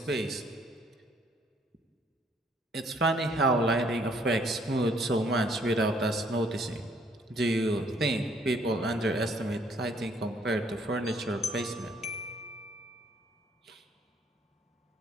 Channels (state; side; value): normal; both; correlation 0.64